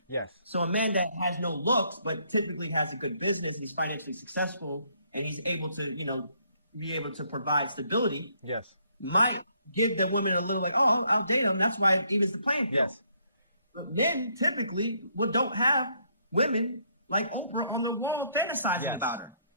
Yes. So a man that has no looks but typically has a good business and he's financially successful and he's able to, be able to provide stability. Yes. Might give the women a little like, oh, I'll date him. That's why it evens the playing field. Yes. But men typically don't have women like Oprah and they're fantasizing about her.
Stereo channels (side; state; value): both; inverted; correlation -0.70